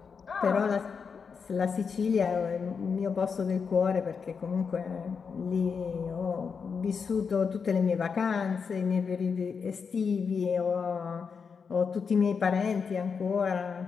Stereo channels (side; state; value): right; quieter; 5.8 dB